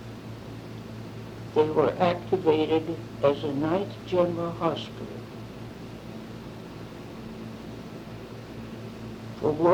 they were activated as a 9th General Hospital. For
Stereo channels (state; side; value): identical; both; correlation 1.00